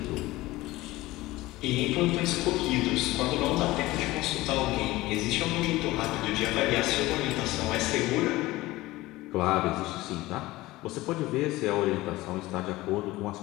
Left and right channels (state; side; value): quieter; right; 18.7 dB